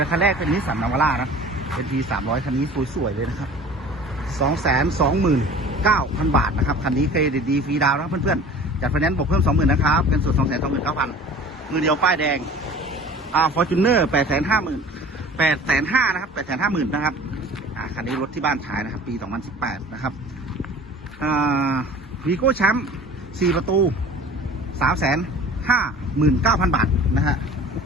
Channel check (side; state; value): both; normal; correlation 0.43